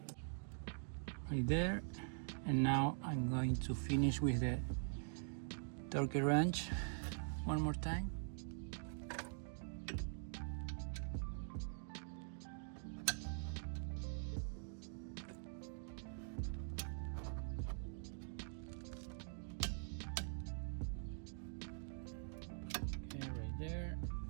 Right there. And now I'm going to finish with the torque wrench one more time. Okay, right there.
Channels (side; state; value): left; silent; digital silence